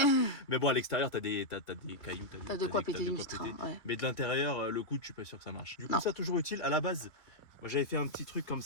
Mais bon, à l'extérieur t'as des cailloux. T'as de quoi péter une vitre. Hein, ouais. Mais de l'intérieur, le coude, je suis pas sûr que ça marche. Du coup, Non. ça toujours utile. À la base, moi j'avais fait un petit truc comme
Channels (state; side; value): late; right; 2.6 ms